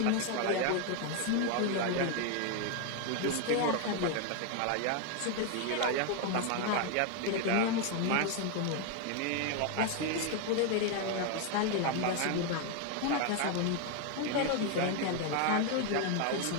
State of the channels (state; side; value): different; both; correlation 0.01